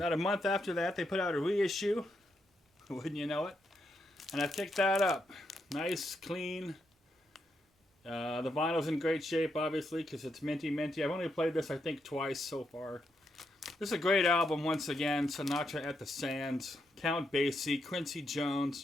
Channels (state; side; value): normal; both; correlation 0.81